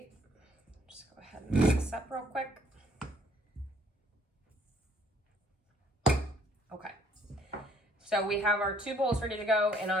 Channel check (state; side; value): normal; both; correlation 0.63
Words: just go ahead and mix this up real quick. Okay, so we have our 2 bowls ready to go, and